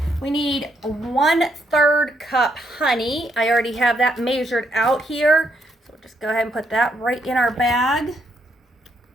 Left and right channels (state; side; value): normal; both; correlation 0.75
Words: we need 1/3 cup honey. I already have that measured out here, so we'll just go ahead and put that right in our bag.